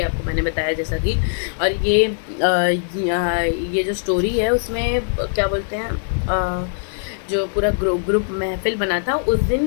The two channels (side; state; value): right; silent; digital silence